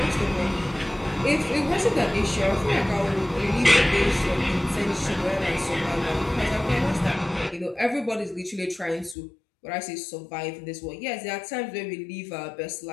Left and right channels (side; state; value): right; drops out; at 9.2 s